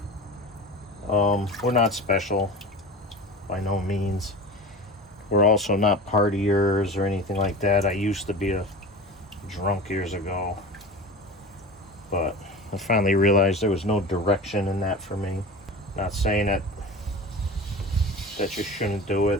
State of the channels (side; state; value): both; normal; correlation 0.33